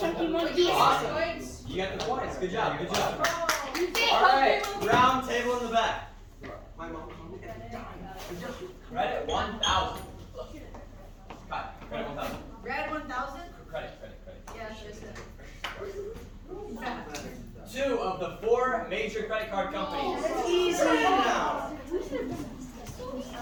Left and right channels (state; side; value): identical; both; correlation 1.00